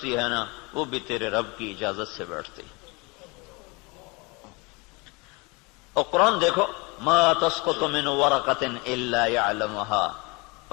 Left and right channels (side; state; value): right; quieter; 27.6 dB